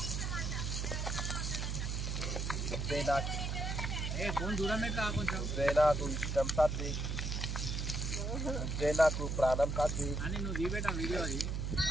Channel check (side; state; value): right; noise; hum, 1 dB below the sound